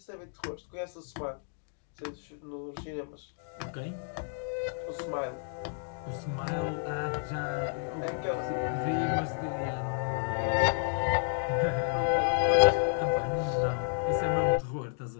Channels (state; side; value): silent; right; 57 dB below the other